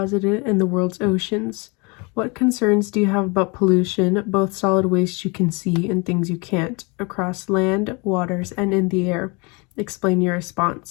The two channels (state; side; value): quieter; right; 29.6 dB